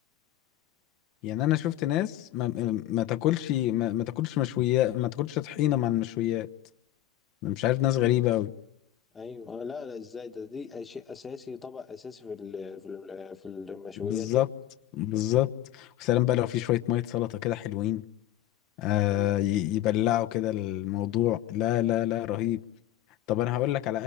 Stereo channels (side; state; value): right; quieter; 13.2 dB